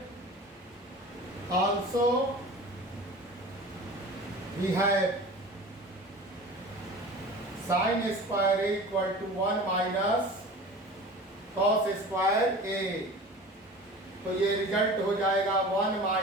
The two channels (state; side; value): normal; both; correlation 0.38